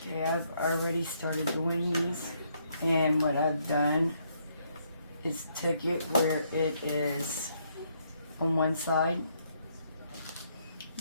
okay, I've already started doing these, and what I've done is took it where it is on one side.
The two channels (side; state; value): both; inverted; correlation -0.72